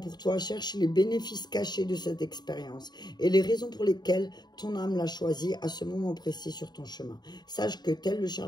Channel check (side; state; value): right; late; 0.20 ms